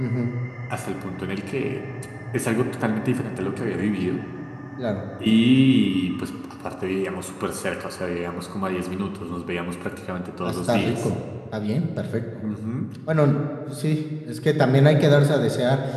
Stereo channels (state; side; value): identical; both; correlation 1.00